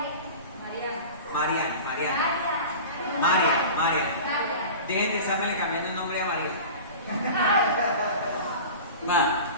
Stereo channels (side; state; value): both; inverted; correlation -0.35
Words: María. Dejen de estarme cambiando el nombre a María. Va,